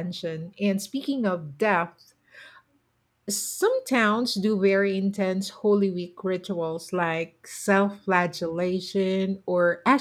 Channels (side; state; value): both; identical; correlation 1.00